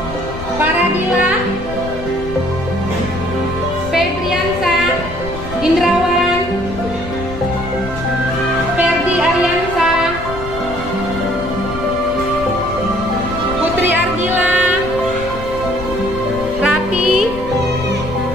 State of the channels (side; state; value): left; noise; rumble, 11 dB below the sound